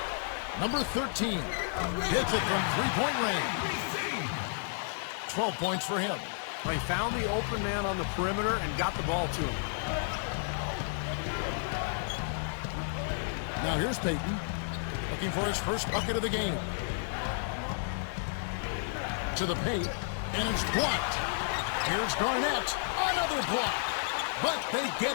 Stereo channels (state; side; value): silent; right; digital silence